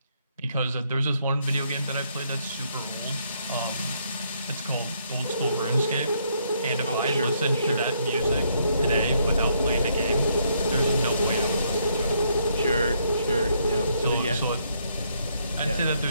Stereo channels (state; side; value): inverted; both; correlation -0.72